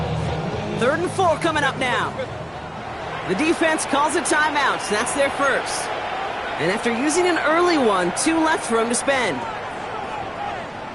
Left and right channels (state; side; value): identical; both; correlation 1.00